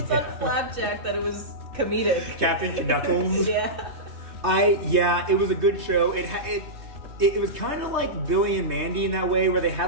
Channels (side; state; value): left; late; 3.2 ms